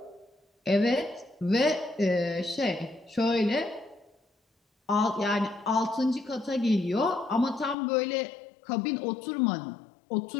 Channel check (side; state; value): right; drops out; at 7.8 s